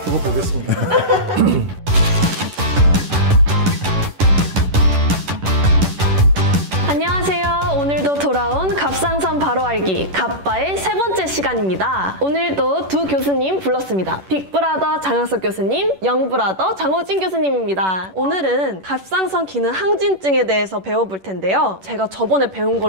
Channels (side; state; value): left; late; 11 ms